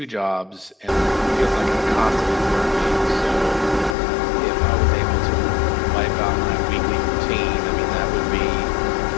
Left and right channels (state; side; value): drops out; right; at 4.0 s